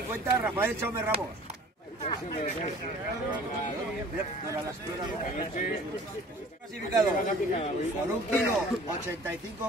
Rafael Chaume Ramos. Clasificado por 1 kilo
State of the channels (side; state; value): both; normal; correlation 0.48